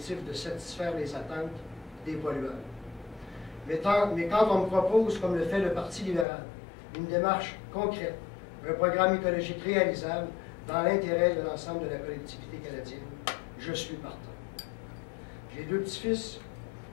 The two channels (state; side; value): drops out; right; at 6.2 s